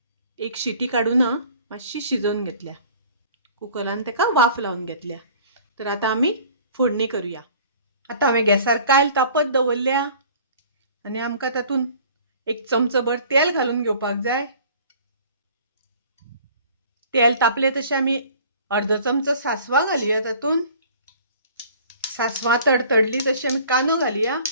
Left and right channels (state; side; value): inverted; both; correlation -0.49